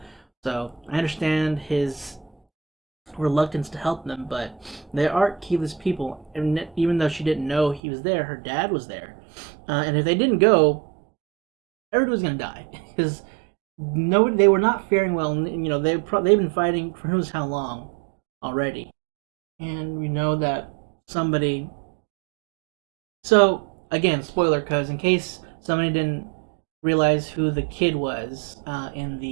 So I understand his reluctance to help them, but they are Keyleth's people, and even though she didn't know he was there, her dad was there, and if they didn't go, everyone was gonna die because they were not faring well. And, they've been fighting for who knows how long already, and we know that somebody. So again, spoiler, because in case somebody didn't realize who the kid was in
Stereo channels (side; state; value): left; drops out; at 7.8 s